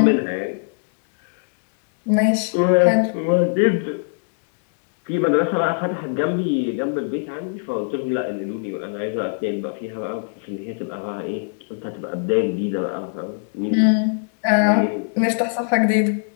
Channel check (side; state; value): right; silent; digital silence